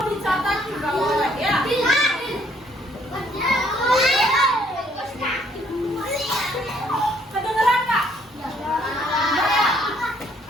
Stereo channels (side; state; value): both; normal; correlation 0.65